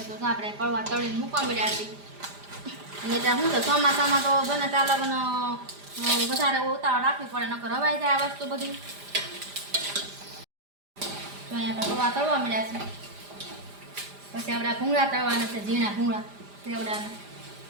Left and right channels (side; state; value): left; late; 5.0 ms